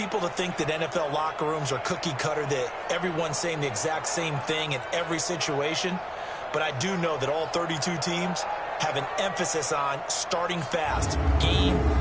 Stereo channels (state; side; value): identical; both; correlation 1.00